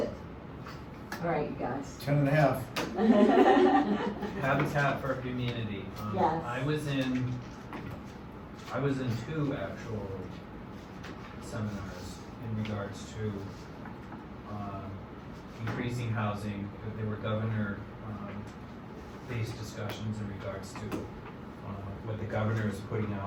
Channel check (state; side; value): identical; both; correlation 1.00